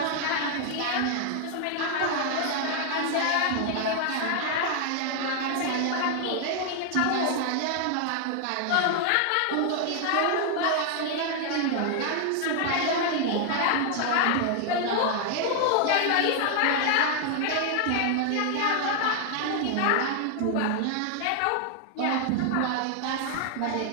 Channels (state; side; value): different; both; correlation 0.00